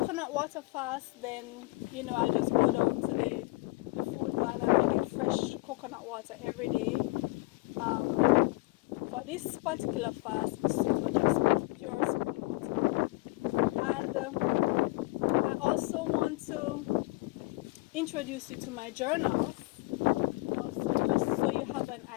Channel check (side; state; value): right; quieter; 22.3 dB